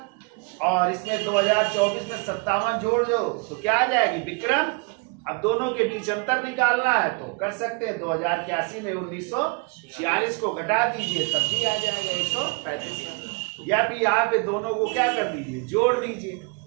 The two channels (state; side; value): quieter; left; 33.6 dB